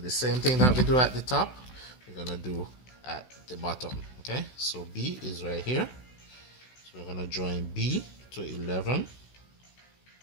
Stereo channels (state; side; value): late; right; 16 ms